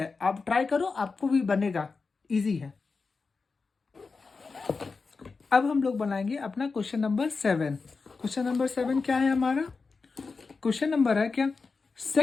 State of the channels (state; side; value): quieter; right; 4.5 dB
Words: आप ट्राई करो, आपको भी बनेगा, इजी है। अब हम लोग बनाएंगे अपना क्वेश्चन नंबर 7। क्वेश्चन नंबर 7 क्या है हमारा? क्वेश्चन नंबर है क्या,